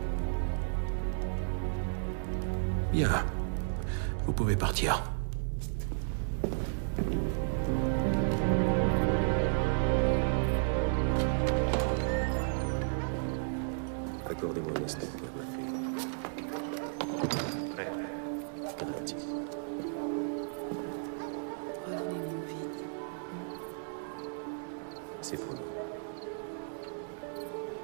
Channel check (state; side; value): silent; left; 55 dB below the other